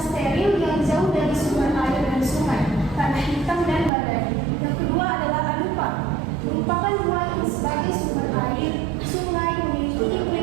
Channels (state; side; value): drops out; left; at 3.9 s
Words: yang jauh dari sumber air dan sungai, tanah hitam dan badai. Yang kedua adalah Anupa, merupakan ruang sebagai sumber air, sungai, memiliki